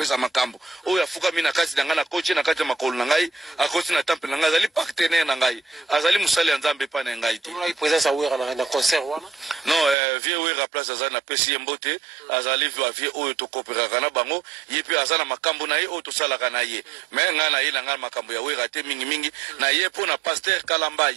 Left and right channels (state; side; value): drops out; left; at 10.0 s